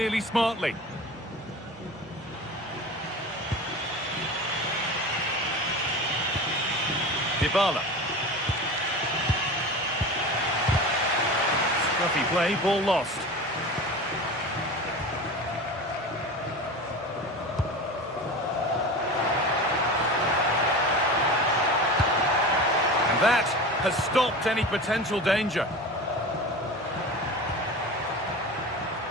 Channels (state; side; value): normal; both; correlation 0.31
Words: smartly. Dybala. Scruffy play, ball lost. And that has stopped any potential danger.